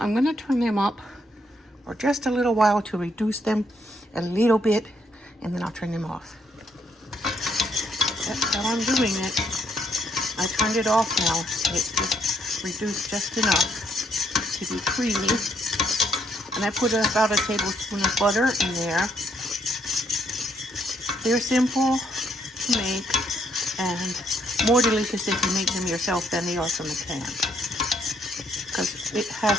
going to turn them up for just a little while to reduce them a little bit, and then I'll turn them off. That's how I'm doing it. I turned it off now. It's just reduced just enough to be creamy. And I put about a tablespoon of butter in there. They're simple to make and more delicious if you make them yourself than they are from a can. Because it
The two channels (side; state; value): both; normal; correlation 0.72